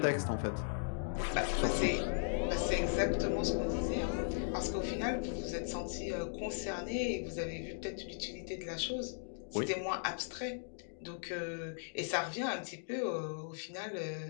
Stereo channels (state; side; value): silent; right; digital silence